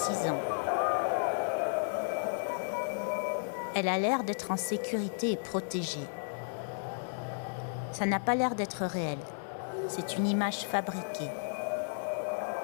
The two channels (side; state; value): right; silent; digital silence